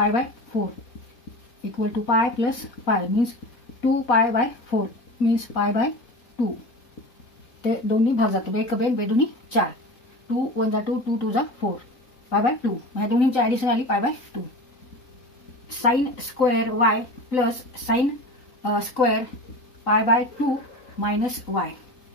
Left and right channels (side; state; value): right; late; 3.9 ms